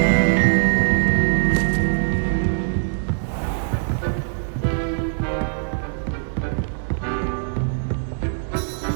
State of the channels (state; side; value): silent; left; digital silence